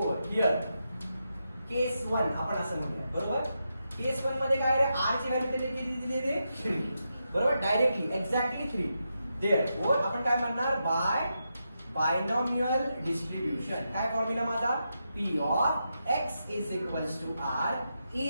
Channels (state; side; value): inverted; both; correlation -0.86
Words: हिअर केस 1 आपण असं म्हणूया. बरोबर. केस 1 मध्ये काय आहे? आर ची व्हॅल्यू त्यांनी किती दिलेली? 3. बरोबर. Directly exactly 3. देअरफॉर आपण काय म्हणणार? By binomial distribution. काय फॉर्म्युला माझा? P of x is equals to R